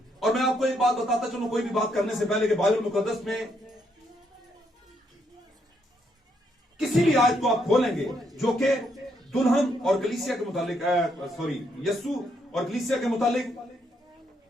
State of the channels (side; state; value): both; normal; correlation 0.75